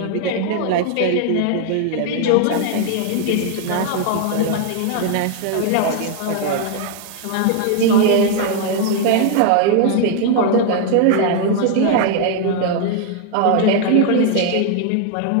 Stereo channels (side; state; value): both; different; correlation 0.00